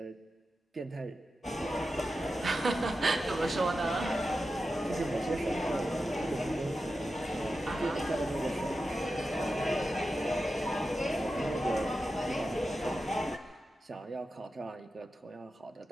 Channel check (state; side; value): normal; both; correlation 0.91